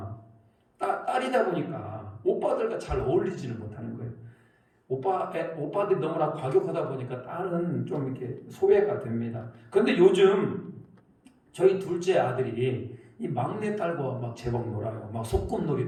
딸이다 보니까 오빠들과 잘 어울리지는 못하는 거예요. 오빠들이 너무나 과격하다 보니까 딸은 좀 이렇게 소외가 됩니다. 그런데 요즘 저희 둘째 아들이 이 막내 딸과 막 제법 놀아요. 막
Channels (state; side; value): identical; both; correlation 1.00